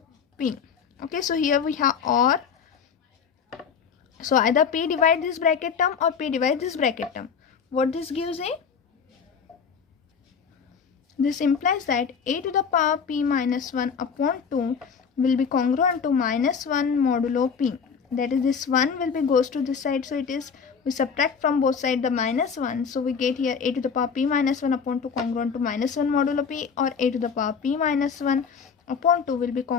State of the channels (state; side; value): quieter; right; 6.3 dB